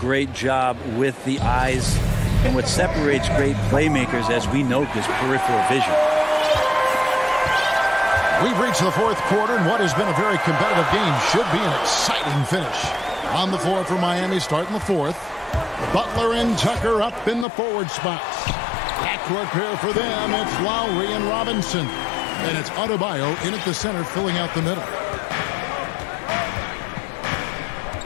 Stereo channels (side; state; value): right; drops out; at 17.4 s